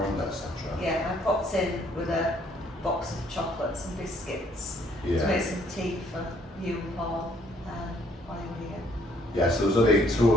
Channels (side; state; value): both; normal; correlation 0.64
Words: etc.? Yeah, I popped in with a box of chocolates and biscuits to make some tea for you and Paul while you were here. Yeah, so there was only two